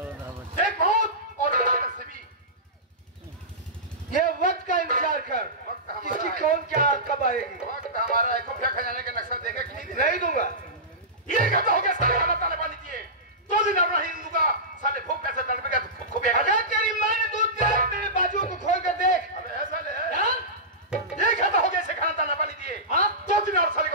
एक मौत और से भी। ये वक्त का इंतजार कर, किसकी कौन क्या कब आएगी। वक्त हमारा है, खुफिया खजाने के नक्शा देगा कि नहीं दूंगा। ये कहता हो गया साले खाना ताले पानी दिए, 2 दिन और नहीं दूंगा, साले भूख कैसे तड़पेगा तो खुफिया। अगर तेरी माँ ने दूध दिया तेरे बाजुओं को खोल कर देख। अबे ऐसा ले, ये कहता हो गया इसे खाना ताना पानी दिए, 2 दिन और साले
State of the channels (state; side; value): normal; both; correlation -0.18